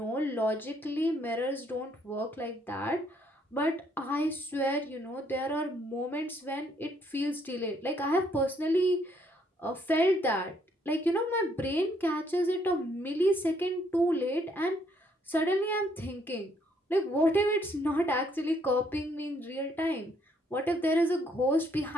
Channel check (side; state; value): both; normal; correlation 0.69